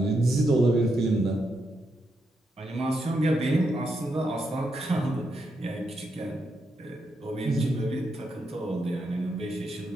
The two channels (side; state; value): both; normal; correlation 0.82